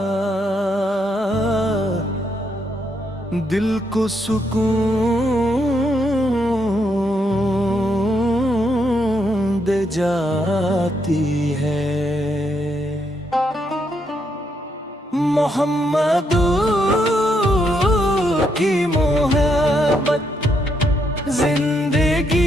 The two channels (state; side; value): normal; both; correlation 0.77